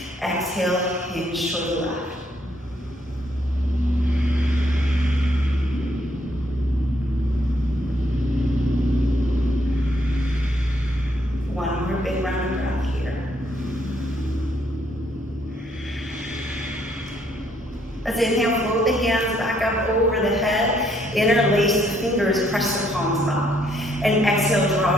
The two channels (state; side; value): normal; both; correlation 0.70